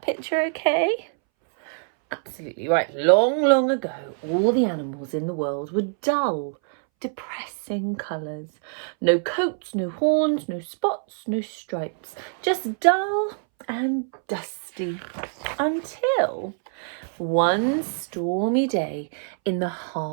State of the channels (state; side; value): silent; left; 62 dB below the other